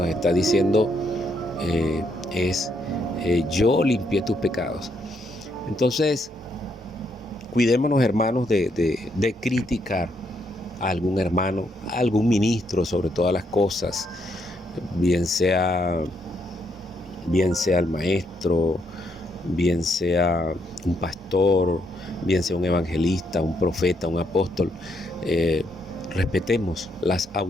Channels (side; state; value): both; normal; correlation 0.75